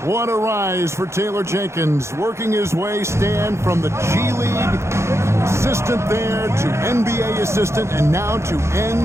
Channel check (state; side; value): late; left; 0.13 ms